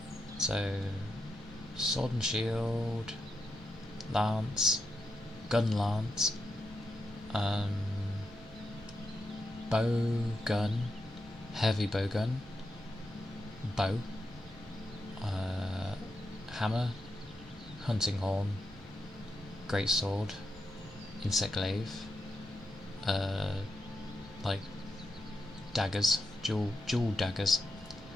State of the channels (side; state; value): right; noise; rumble, 21 dB below the sound